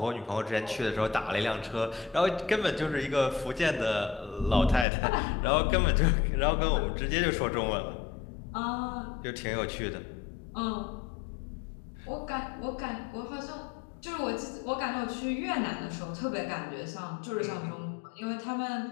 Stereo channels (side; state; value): right; drops out; at 4.9 s